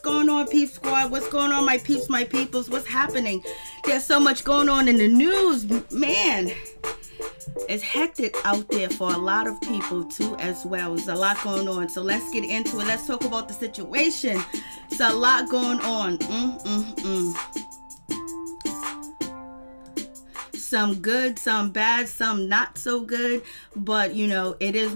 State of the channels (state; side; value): inverted; both; correlation -1.00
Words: on, Peep Squad? What's going on, my peeps, my peoples? What's happening? There's so much going on in the news, man. It's hectic out there for a lot of people, too, as well. There's a lot going on. So let's get into it. Let's talk about the situation. It's a lot going on. Some good, some bad, some not so good, but you know, it is